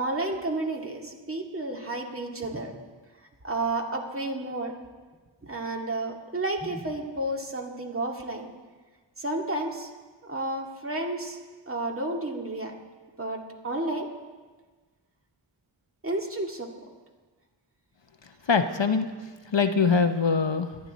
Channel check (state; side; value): normal; both; correlation -0.04